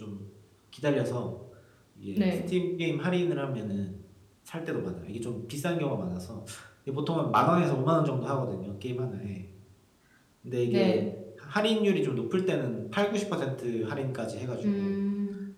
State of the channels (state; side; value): identical; both; correlation 1.00